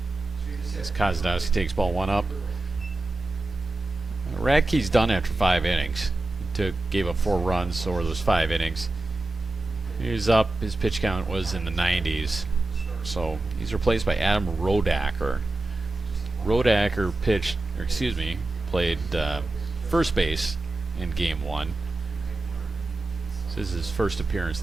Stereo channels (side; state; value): left; quieter; 3.0 dB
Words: As Kozadowski takes ball 1 up. Radke's done after 5 innings. He gave up 4 runs over those 5 innings. He was up. His pitch count was in the 90s. So he's replaced by Adam Rodacker. Rodacker played first base in game 1. This is his first appearance